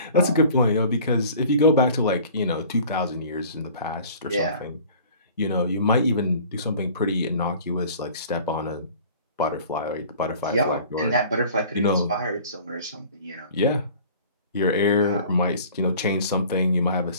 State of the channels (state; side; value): inverted; both; correlation -0.46